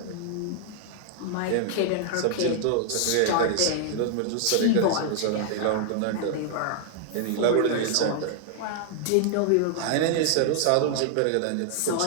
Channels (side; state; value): both; different; correlation 0.00